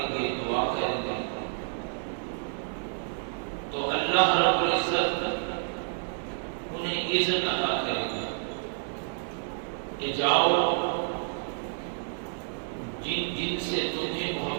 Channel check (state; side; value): silent; left; 58 dB below the other